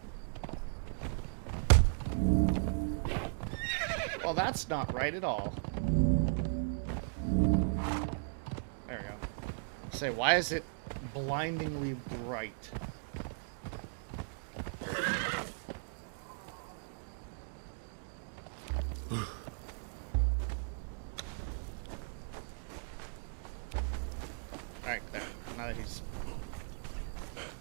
Well, that's not right at all. There we go. Say, why is it blindingly bright? Alright, there. Now that he's...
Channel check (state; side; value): silent; left; digital silence